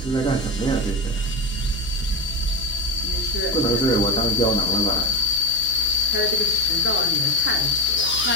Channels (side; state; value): right; noise; hum, 12 dB below the sound